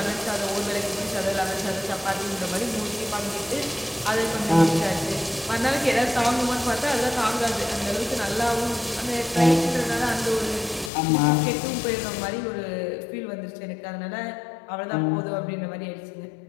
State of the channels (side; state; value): right; drops out; at 10.9 s